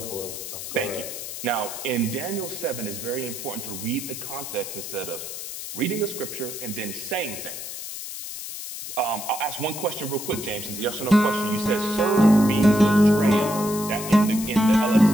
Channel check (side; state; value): left; noise; hiss, 8 dB below the sound